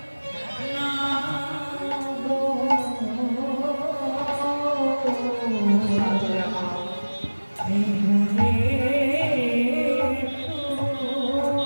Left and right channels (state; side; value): inverted; both; correlation -1.00